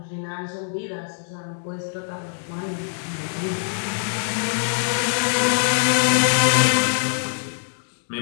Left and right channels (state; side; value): silent; right; 63 dB below the other